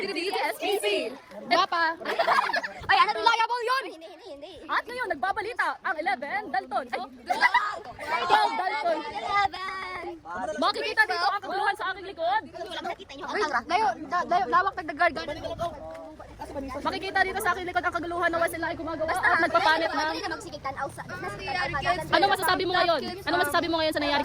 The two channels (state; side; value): identical; both; correlation 1.00